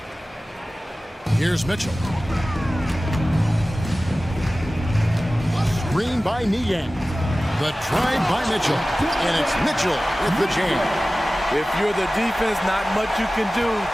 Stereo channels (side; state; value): both; normal; correlation 0.97